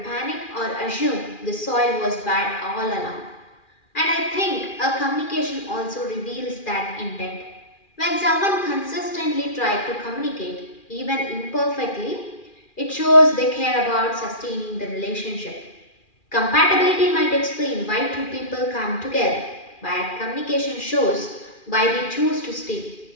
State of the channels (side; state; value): right; late; 2.4 ms